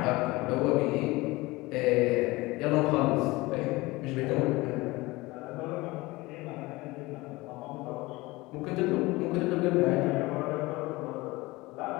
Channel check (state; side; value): quieter; right; 21.5 dB